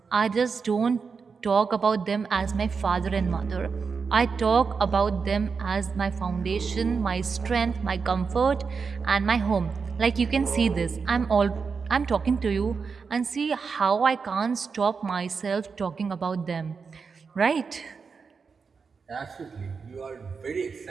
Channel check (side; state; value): left; quieter; 5.3 dB